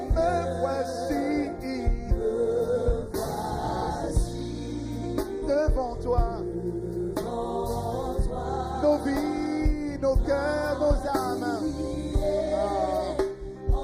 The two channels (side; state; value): both; identical; correlation 1.00